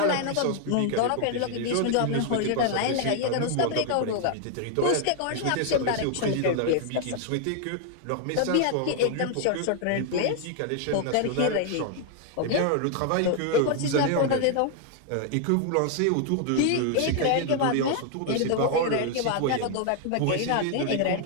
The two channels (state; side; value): different; both; correlation 0.00